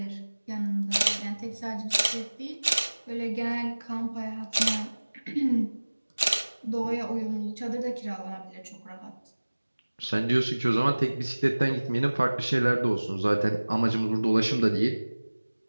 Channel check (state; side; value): inverted; both; correlation -1.00